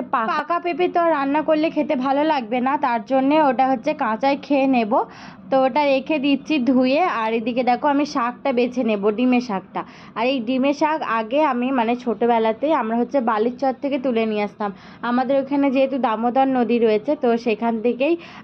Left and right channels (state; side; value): identical; both; correlation 1.00